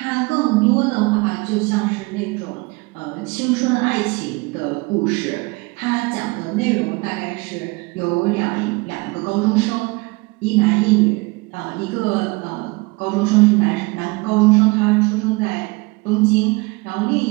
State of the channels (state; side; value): quieter; left; 25.4 dB